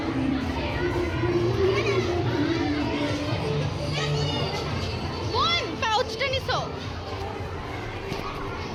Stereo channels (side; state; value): both; identical; correlation 1.00